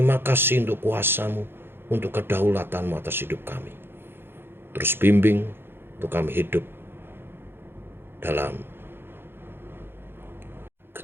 kasih untuk kuasa-Mu, untuk kedaulatan-Mu atas hidup kami. Terus bimbing untuk kami hidup dalam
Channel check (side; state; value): left; late; 0.10 ms